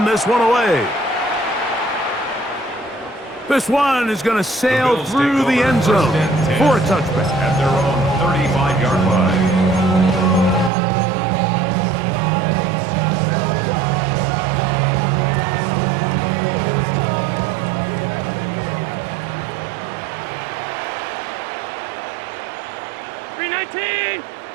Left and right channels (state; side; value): drops out; left; at 10.7 s